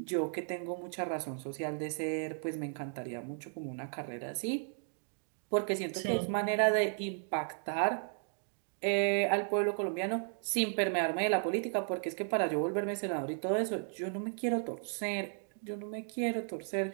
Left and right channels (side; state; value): left; silent; 55 dB below the other